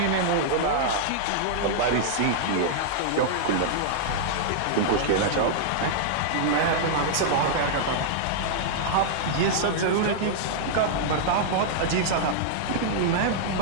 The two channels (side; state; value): both; different; correlation -0.02